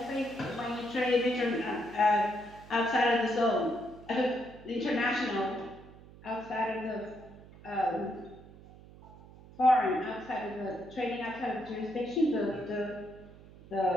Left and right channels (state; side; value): noise; right; hum, 20 dB below the sound